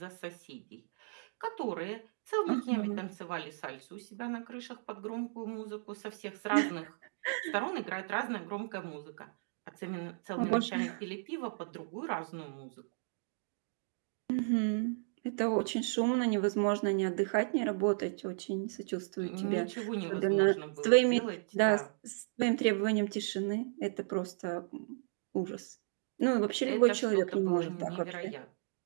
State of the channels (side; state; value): left; silent; digital silence